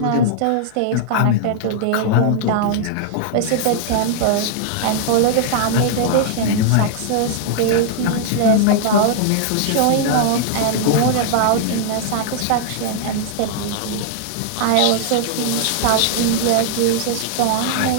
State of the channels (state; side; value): different; both; correlation -0.01